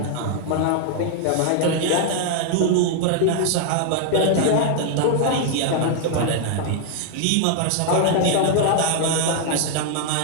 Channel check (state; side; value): different; both; correlation 0.00